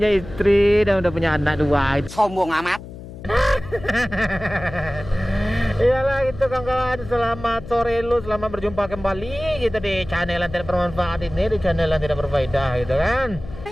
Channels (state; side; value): noise; left; hum, 14 dB below the sound